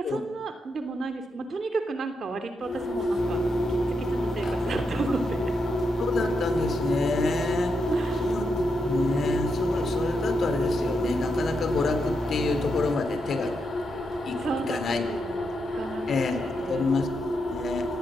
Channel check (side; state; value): both; normal; correlation 0.83